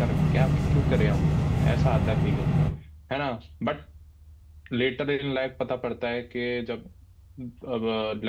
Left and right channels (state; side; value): identical; both; correlation 1.00